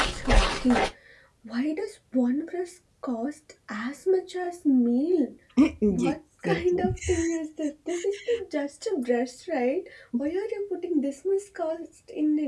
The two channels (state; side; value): identical; both; correlation 1.00